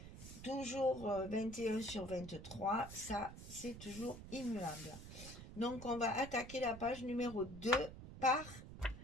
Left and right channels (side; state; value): right; noise; rumble, 12 dB below the sound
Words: Toujours 21 sur 23, ça, c'est toujours immuable. Donc, on va attaquer la page numéro 2 par